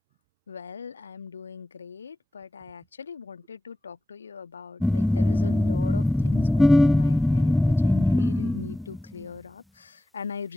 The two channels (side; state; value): both; normal; correlation 0.95